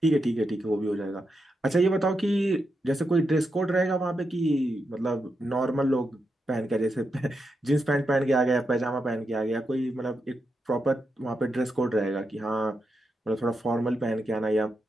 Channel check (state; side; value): normal; both; correlation 0.85